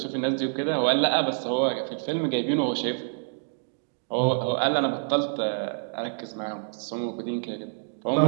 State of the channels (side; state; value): left; silent; digital silence